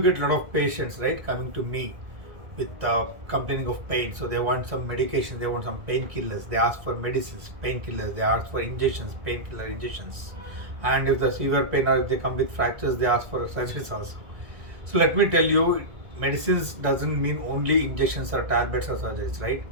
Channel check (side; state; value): left; late; 1.9 ms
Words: get a lot of patients, right, coming to me with complaining of pain. So they want some medication, they want some painkillers, they ask for medicines, painkillers, they ask for injections, painkiller injections. And if the severe pain or if they come with fractures, they ask for surgeries also. So let me tell you, medicines doesn't mean only injections or tablets or surgeries, right?